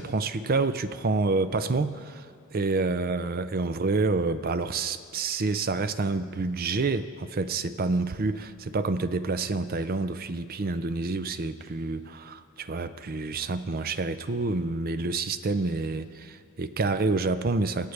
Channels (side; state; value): left; quieter; 3.1 dB